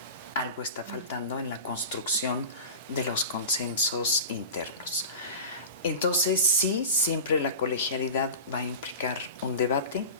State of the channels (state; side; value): inverted; both; correlation -0.31